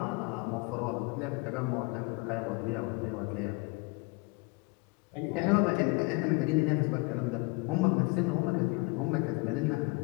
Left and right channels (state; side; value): quieter; right; 27.3 dB